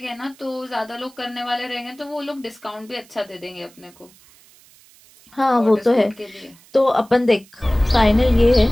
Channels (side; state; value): right; noise; hiss, 27 dB below the sound